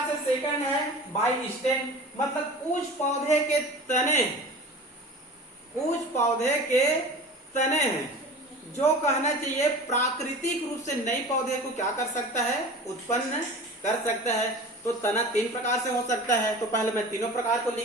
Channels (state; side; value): normal; both; correlation 0.37